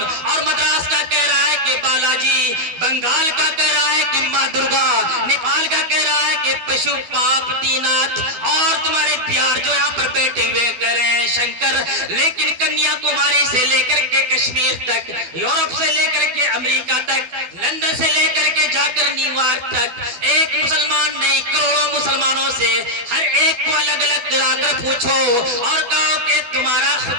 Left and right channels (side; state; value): left; late; 12 ms